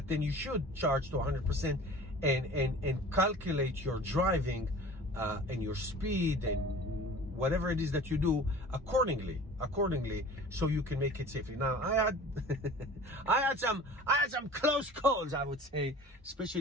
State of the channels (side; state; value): both; normal; correlation 0.42